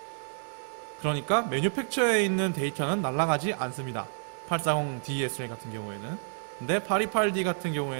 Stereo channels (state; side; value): silent; left; digital silence